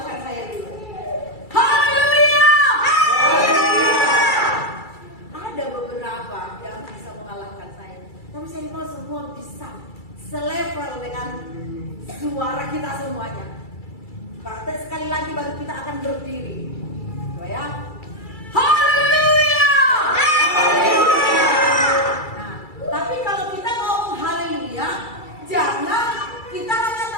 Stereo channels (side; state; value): right; late; 2.3 ms